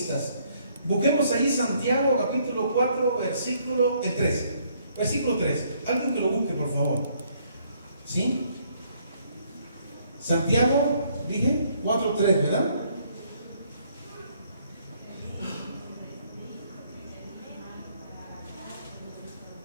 Busquemos ahí Santiago capítulo 4, versículo 3. Versículo 3. Alguien que lo busque, por favor. ¿Sí? Santiago, dije, 4, 3, ¿verdad?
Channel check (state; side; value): inverted; both; correlation -0.67